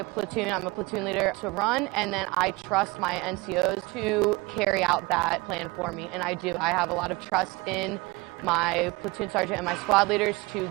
platoon, I'm a platoon leader, to run, and then I trust my NCOs to carry out that plan for me, and I do. I have a lot of trust in my platoon sergeant and my squad leaders to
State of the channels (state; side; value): quieter; left; 24.0 dB